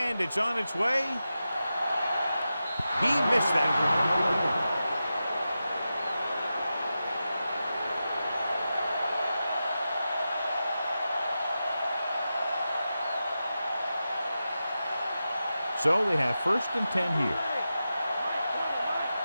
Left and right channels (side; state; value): both; inverted; correlation -0.91